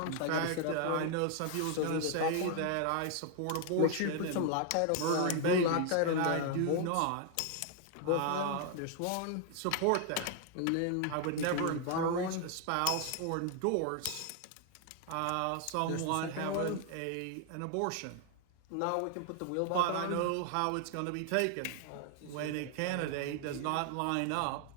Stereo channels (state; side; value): different; both; correlation 0.00